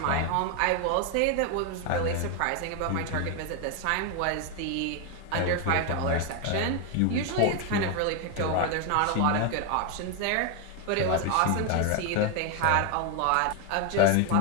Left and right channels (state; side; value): different; both; correlation 0.01